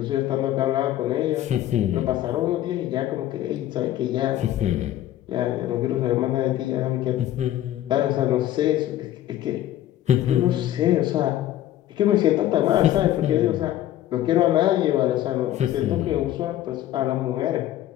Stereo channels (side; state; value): right; quieter; 13.0 dB